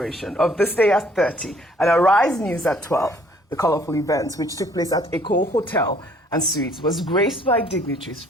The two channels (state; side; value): normal; both; correlation 0.60